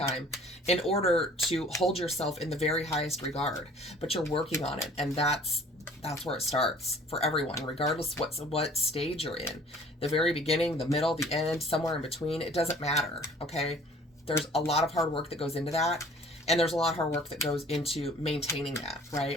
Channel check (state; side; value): normal; both; correlation 0.52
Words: in order to hold yourself in the very highest regard, but you're working on it. And that's where it starts for everyone, regardless what stage you're in. The very beginning, the middle, the end, somewhere in between, it doesn't matter, okay? There's a lot of hard work that goes into that, and there's a lot of hard work that goes into maintaining that,